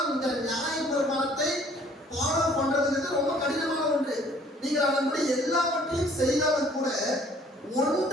இந்த நியாயப்பிரமாணத்தை ஃபாலோ பண்றதுங்கிறது ரொம்ப கடினமான ஒன்று. நீங்கள் அதன்படி எல்லாவற்றையும் செய்தாலும் கூட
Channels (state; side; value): normal; both; correlation 0.57